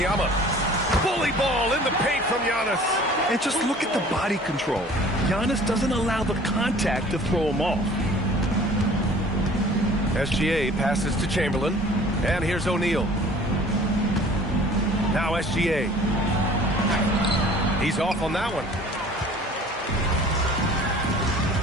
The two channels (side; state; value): both; normal; correlation 0.48